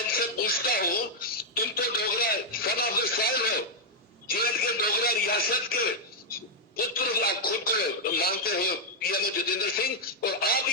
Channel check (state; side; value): normal; both; correlation -0.03